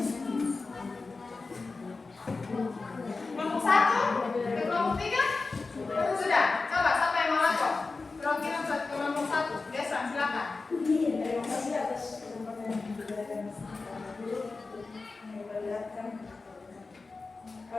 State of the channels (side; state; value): right; quieter; 3.9 dB